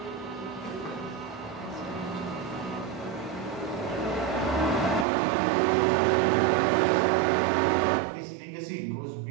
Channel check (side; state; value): left; drops out; at 5.1 s